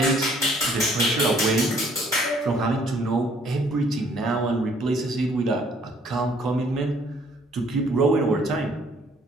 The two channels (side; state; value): both; normal; correlation 0.61